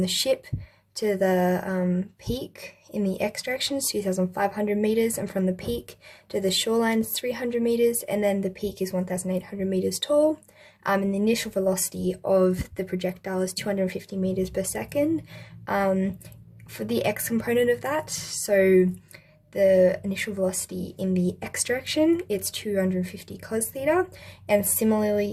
ship to the peak in the x direction is 2,500 meters, and from the peak to the shoreline is 300 meters, and then the peak is 1,800 meters tall. And the initial velocity of the projectile is 250 meters per second. For the x component of that, so the initial velocity in the x direction, it's 250 cos theta, and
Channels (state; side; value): identical; both; correlation 1.00